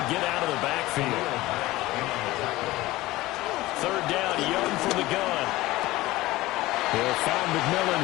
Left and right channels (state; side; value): quieter; right; 18.3 dB